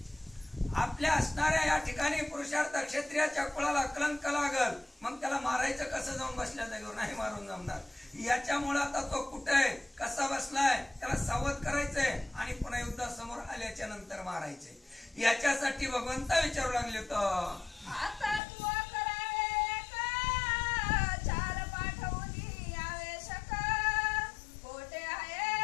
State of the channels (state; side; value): drops out; right; at 18.4 s